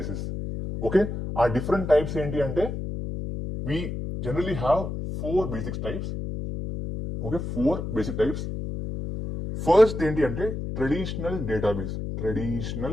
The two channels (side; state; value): left; noise; hum, 5 dB below the sound